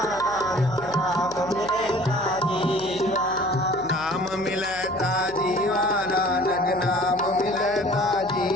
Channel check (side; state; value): left; noise; hum, 18 dB below the sound